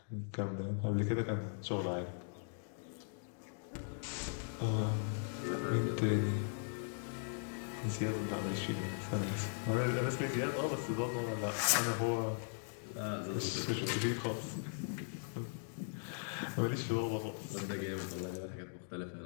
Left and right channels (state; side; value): silent; right; digital silence